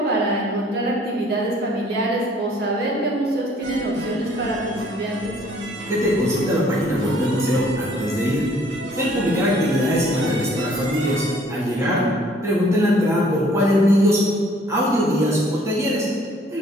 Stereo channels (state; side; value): normal; both; correlation 0.59